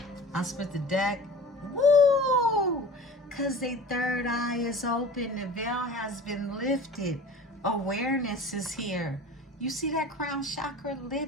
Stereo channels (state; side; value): normal; both; correlation 0.39